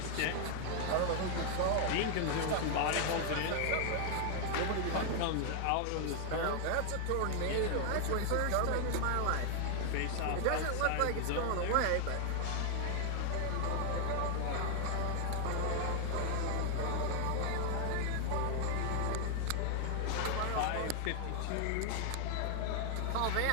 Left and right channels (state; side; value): different; both; correlation 0.00